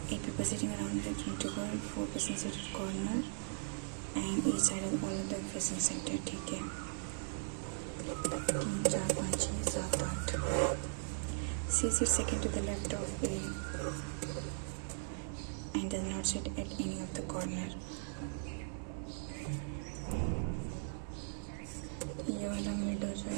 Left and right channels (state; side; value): silent; left; digital silence